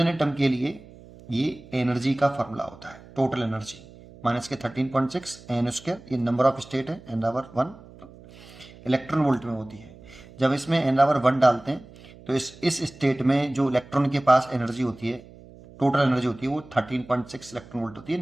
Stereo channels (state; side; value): noise; right; hum, 21 dB below the sound